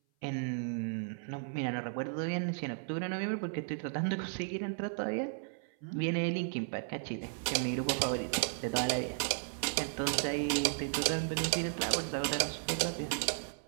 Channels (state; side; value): silent; left; 55 dB below the other